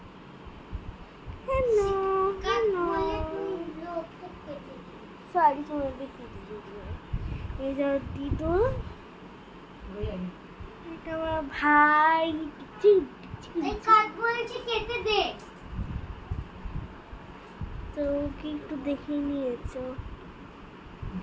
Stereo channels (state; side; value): identical; both; correlation 1.00